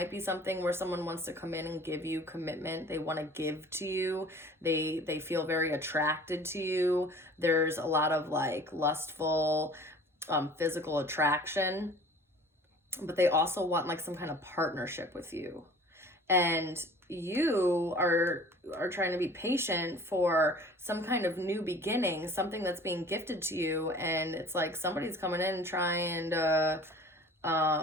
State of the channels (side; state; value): both; normal; correlation 0.47